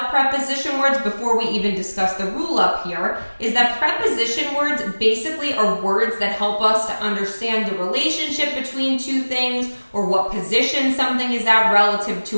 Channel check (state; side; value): inverted; both; correlation -1.00